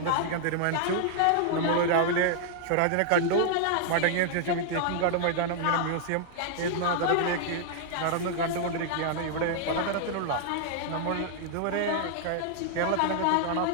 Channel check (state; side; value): different; both; correlation -0.01